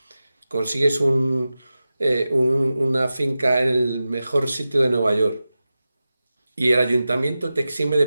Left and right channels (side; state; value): both; inverted; correlation -0.94